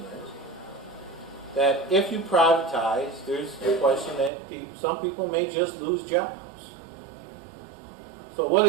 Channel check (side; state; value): left; drops out; at 4.3 s